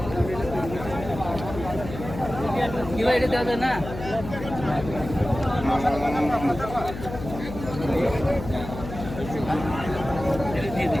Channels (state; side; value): noise; left; hum, 9 dB below the sound